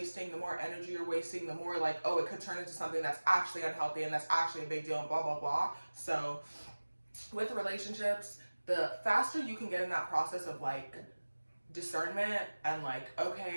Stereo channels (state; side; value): inverted; both; correlation -1.00